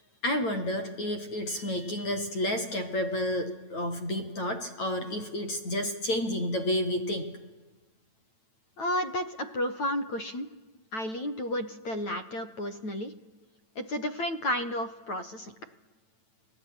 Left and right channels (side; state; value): right; late; 9.0 ms